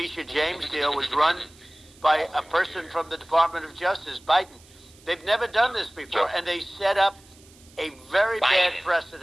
James deal was run by a person from the Department of Justice, Biden. They've never done this before, and they set up a very bad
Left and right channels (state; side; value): noise; right; hiss, 26 dB below the sound